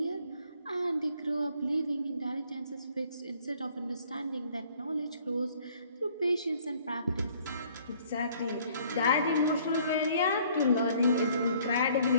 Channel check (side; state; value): both; inverted; correlation -0.59